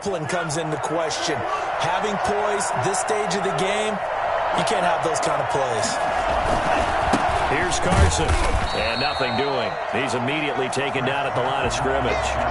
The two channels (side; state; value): both; identical; correlation 1.00